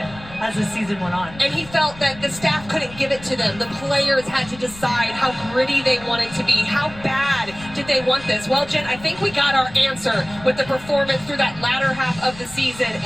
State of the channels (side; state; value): left; noise; rumble, 18 dB below the sound